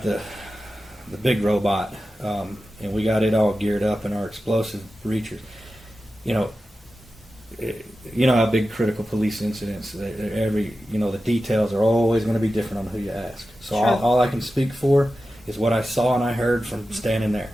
the big robot, and we got it all geared up in our explosive breachers. you know how big critical police incidents, the details are always going to be different on who you ask. So Sure. all I can speak for is what I saw and I heard from standing there.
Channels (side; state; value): both; normal; correlation 0.93